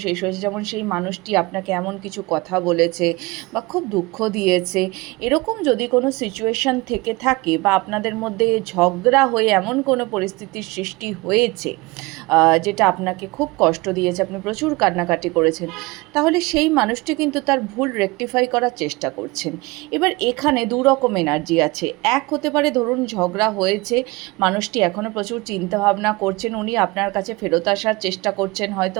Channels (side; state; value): left; quieter; 23.5 dB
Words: শেষ হয়েছে, যেমন সেই মানুষটি আপনাকে এমন কিছু কথা বলেছে বা খুব দুঃখ দিয়েছে। এরকম যদি কোনো সিচুয়েশান থেকে থাকে বা আপনাদের মধ্যে ঝগড়া হয়ে এমন কোনো পরিস্থিতির সৃষ্টি হয়েছে যেটা আপনাকে খুব কষ্ট দিয়েছে, আপনি প্রচুর কান্নাকাটি করেছেন, তাহলে সেই মানুষটি কিন্তু তার ভুল রেকটিফাই করার চেষ্টা করছেন। এবার এখানে দু রকম এনার্জি আছে। এক হতে পারে, ধরুন ঝগড়া হয়েছে, মানুষটি এখনও প্রচুর চিন্তাভাবনা করছেন, উনি আপনার কাছে ফেরত আসার চেষ্টা করছেন, হয়তো